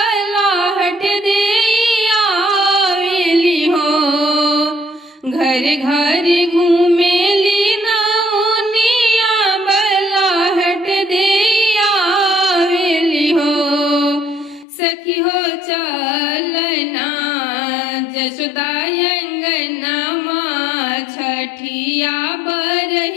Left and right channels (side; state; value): right; drops out; at 14.7 s